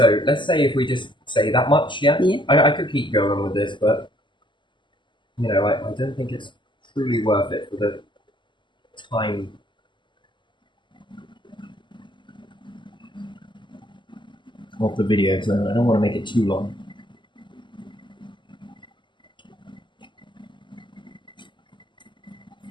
let's say if we just say that much, I could keep going with this, but I don't think it's truly worth it for the time. of the video, so I don't want to make it too long.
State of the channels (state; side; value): late; right; 0.23 ms